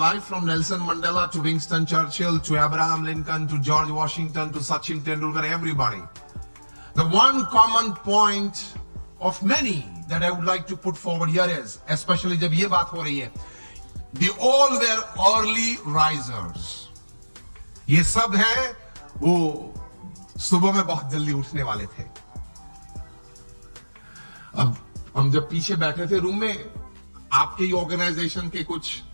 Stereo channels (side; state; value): both; inverted; correlation -1.00